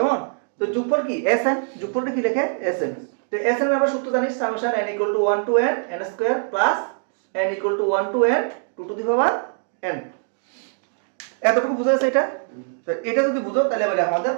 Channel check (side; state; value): left; silent; digital silence